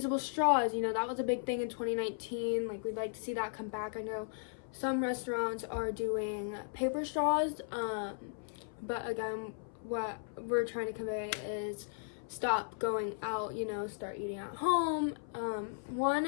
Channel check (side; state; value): right; silent; 54 dB below the other